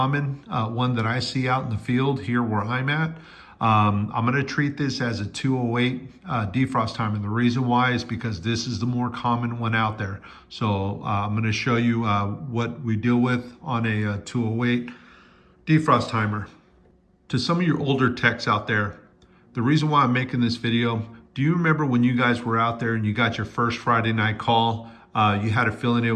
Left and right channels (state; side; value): identical; both; correlation 1.00